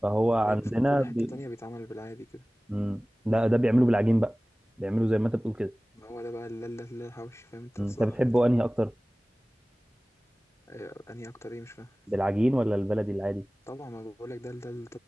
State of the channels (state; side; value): normal; both; correlation 0.98